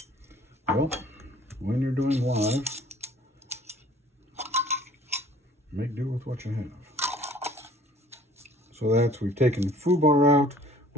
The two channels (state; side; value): normal; both; correlation 0.52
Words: Well, when you're doing live, make do with what you have. So we've taken Fubar out,